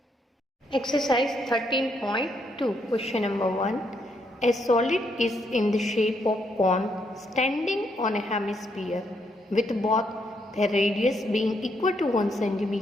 Exercise 13.2, question number 1. A solid is in the shape of cone standing on a hemisphere with both the radius being equal to 1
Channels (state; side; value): normal; both; correlation 0.75